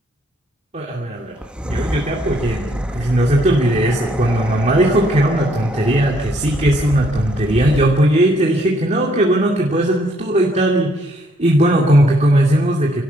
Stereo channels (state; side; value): normal; both; correlation 0.69